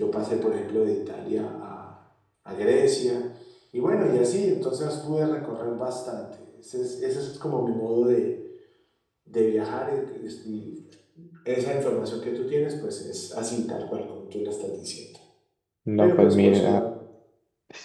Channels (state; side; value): identical; both; correlation 1.00